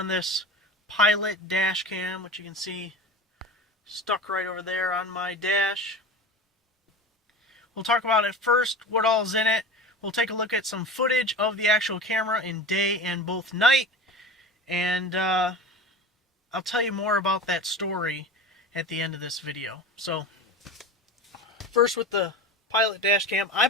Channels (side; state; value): both; normal; correlation 0.32